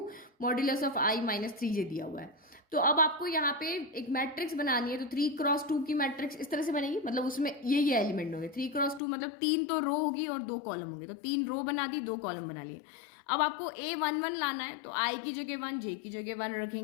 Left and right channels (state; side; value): drops out; right; at 9.0 s